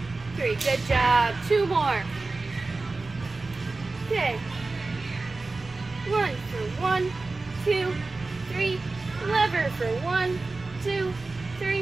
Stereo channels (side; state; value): left; quieter; 3.5 dB